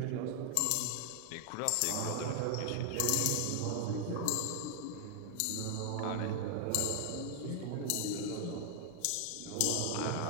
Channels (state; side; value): different; both; correlation 0.00